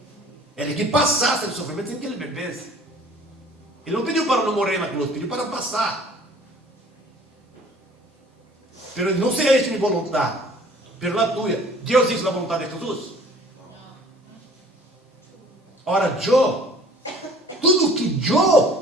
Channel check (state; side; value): normal; both; correlation 0.52